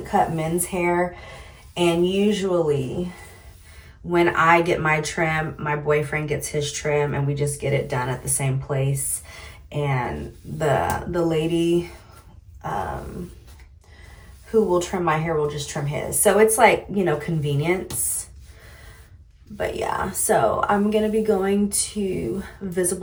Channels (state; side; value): identical; both; correlation 1.00